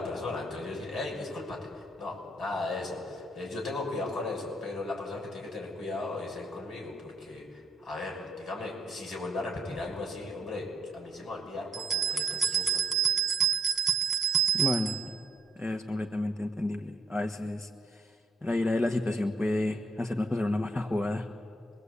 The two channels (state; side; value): normal; both; correlation 0.72